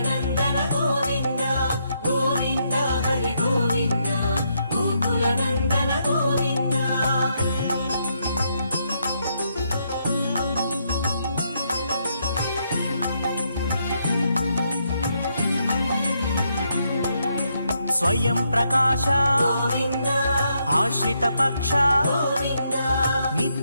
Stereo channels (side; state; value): both; inverted; correlation -0.77